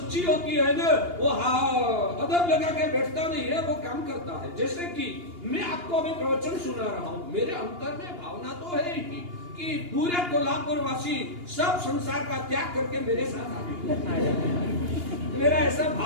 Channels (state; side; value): late; left; 2.8 ms